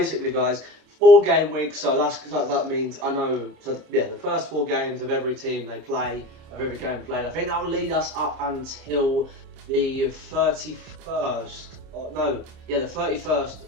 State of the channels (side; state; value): left; late; 27 ms